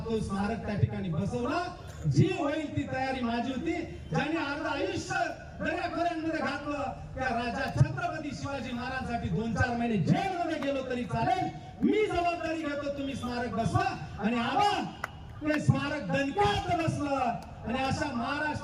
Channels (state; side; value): identical; both; correlation 1.00